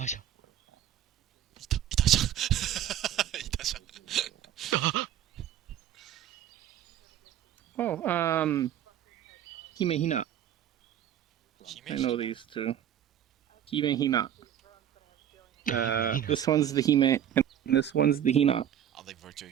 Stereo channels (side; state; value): left; quieter; 10.5 dB